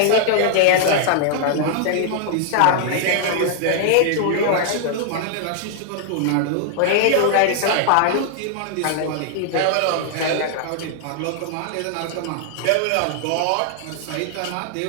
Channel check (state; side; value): different; both; correlation -0.01